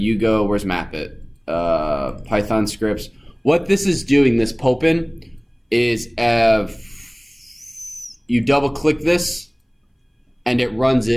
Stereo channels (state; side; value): identical; both; correlation 1.00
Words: go, where's Mapit? Python scripts. What this is doing, this Popen, is you double click this and it runs